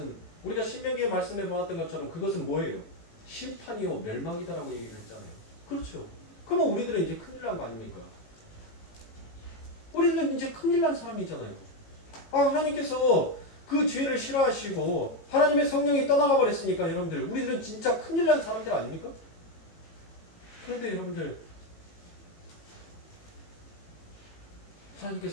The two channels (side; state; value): right; late; 18 ms